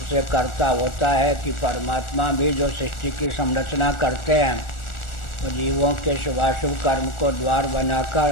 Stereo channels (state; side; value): late; right; 1.4 ms